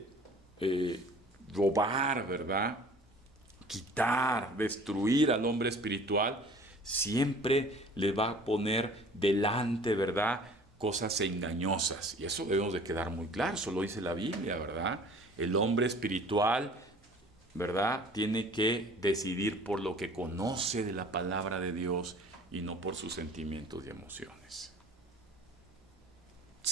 robar, ¿verdad? Quitar, destruir al hombre espiritual, siempre le va a poner delante, ¿verdad?, cosas engañosas. Y eso debemos de quedar muy claro, eso lo dice la Biblia, ¿verdad? El hombre espiritual, ¿verdad?, tiene que decidir por lo que conoce de la palabra de Dios y no por sus sentimientos y emociones.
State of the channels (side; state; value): both; normal; correlation 0.48